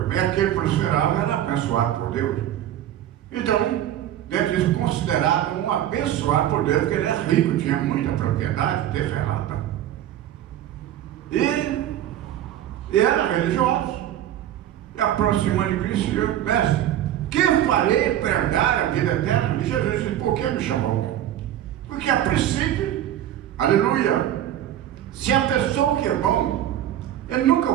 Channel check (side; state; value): left; quieter; 11.8 dB